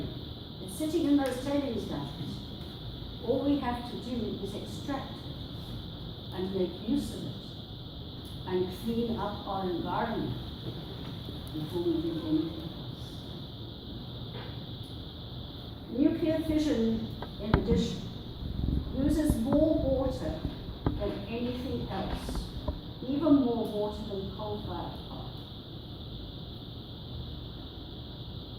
It's sitting in those tailings dams. All we have to do is extract it and make use of it and clean up our environment before we do anything else. Nuclear fission, in addition, uses more water than anything else, even more water than coal-fired power.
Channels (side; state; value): both; identical; correlation 1.00